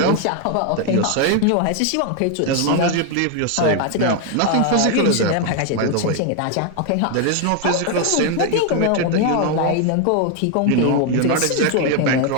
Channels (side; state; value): both; different; correlation 0.01